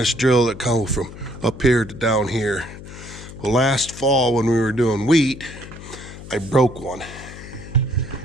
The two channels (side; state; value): left; noise; hum, 14 dB below the sound